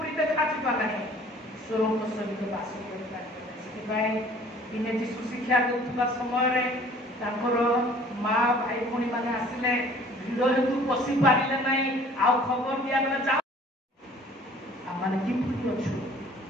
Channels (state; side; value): normal; both; correlation 0.52